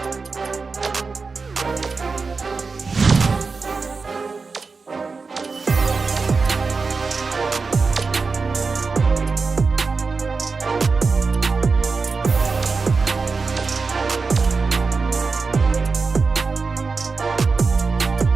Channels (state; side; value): quieter; left; 4.5 dB